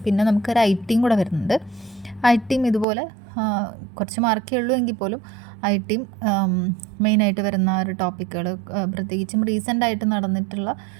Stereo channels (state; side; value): drops out; left; at 2.9 s